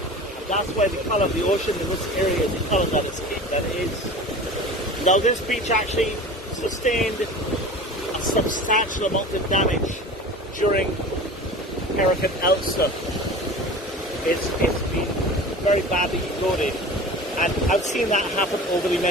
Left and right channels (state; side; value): normal; both; correlation 0.37